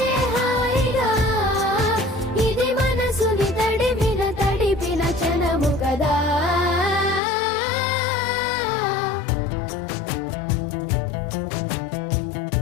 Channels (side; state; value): right; drops out; at 7.2 s